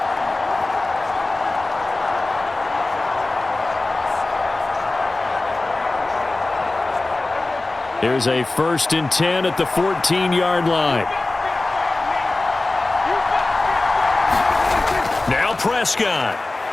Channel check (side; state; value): right; quieter; 3.1 dB